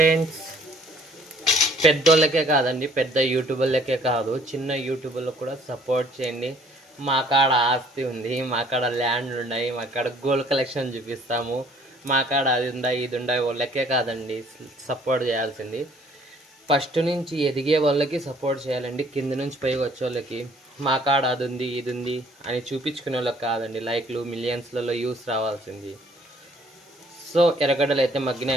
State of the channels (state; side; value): normal; both; correlation 0.59